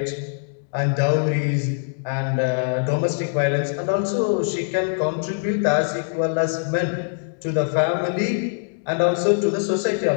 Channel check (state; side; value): silent; right; digital silence